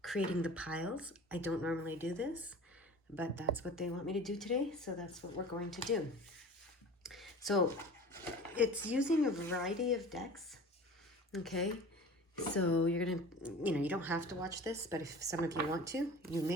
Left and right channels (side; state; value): both; normal; correlation 0.39